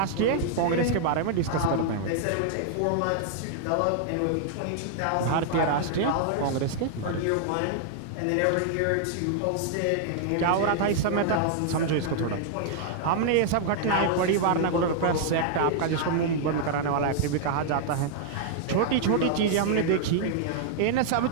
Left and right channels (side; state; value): both; different; correlation -0.01